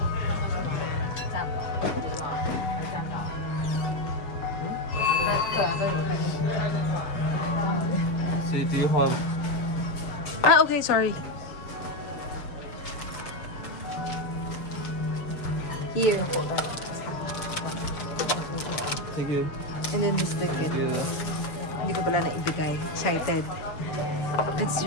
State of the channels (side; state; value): right; late; 7.2 ms